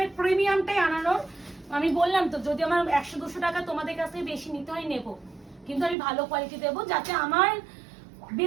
প্রিমিয়ামটাই আনানোর, আমি বললাম তো যদি আমার 100-200 টাকা তোমাদের কাছ থেকে বেশি নিতে হয় নেবো, কিন্তু আমি ভালো কোয়ালিটি দেবো, যাতে আমার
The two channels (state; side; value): drops out; left; at 6.0 s